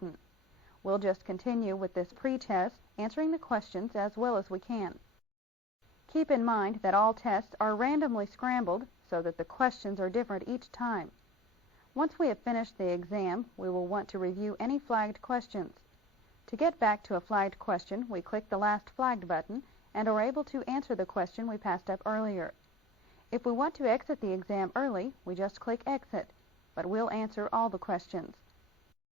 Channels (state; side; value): normal; both; correlation 0.40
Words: We'll just continue with this pretest, answering the questions as well as we can. Keep in mind that all tests are randomly scrambled so that the questions are different each time. Once we have finished the exam, we will want to review any flagged questions. To get back to a flagged question, we click the last flagged button and are able to answer the question we passed up earlier. If we want to exit the exam early, we just click Exit, but we'll answer all the questions.